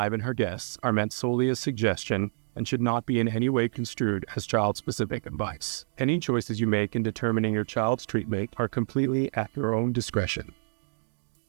and her guests are meant solely as suggestion and should not be in any way construed as child-specific advice. Any choices you make in determining your child's treatment are completely at your own discretion.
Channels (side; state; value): left; silent; digital silence